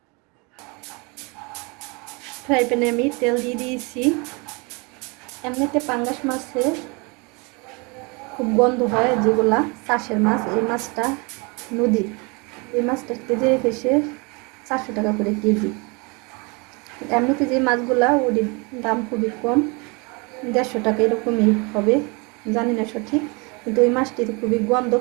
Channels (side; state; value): left; quieter; 29.6 dB